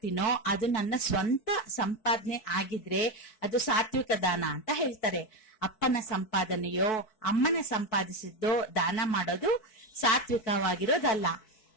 ಅದು ನನ್ನ ಸ್ವಂತ ಸಂಪಾದನೆ ಆಗಿದ್ರೆ ಅದು ಸಾತ್ವಿಕ ದಾನ ಅಂತ ಹೇಳ್ತಾರೆ. ಅಪ್ಪನ ಸಂಪಾದನೆಯೋ ಅಮ್ಮನ ಸಂಪಾದಿಸಿದ್ದೋ ದಾನ ಮಾಡೋದು ಸಾತ್ವಿಕವಾಗಿರೋದಲ್ಲ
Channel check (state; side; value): late; right; 4.6 ms